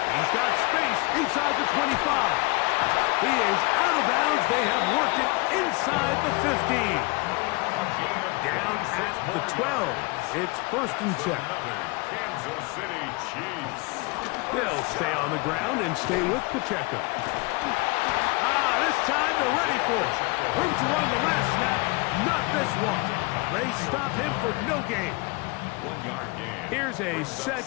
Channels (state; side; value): quieter; right; 26.4 dB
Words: He's got space inside the 25. He is out of bounds. They have worked it inside the 15. Down at the 12. It's 1st and 10. Kansas City Chiefs. They'll stay on the ground and stay with Pacheco. This time they're ready for it. Room to run the last snap. Not this one. They stop him for no gain. 1-yard gain. Here's a